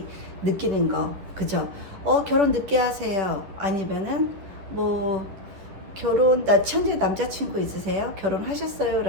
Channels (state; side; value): late; left; 11 ms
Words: 느끼는 거, 그죠? 결혼 늦게 하세요. 아니면은, 뭐, 현재 남자친구 있으세요? 결혼하셨어요?